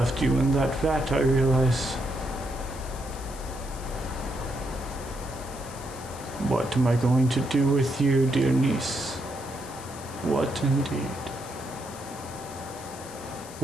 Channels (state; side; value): noise; left; hiss, 16 dB below the sound